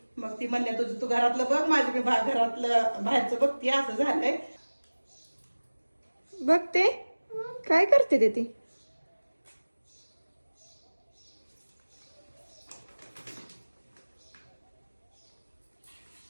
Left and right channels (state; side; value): inverted; both; correlation -1.00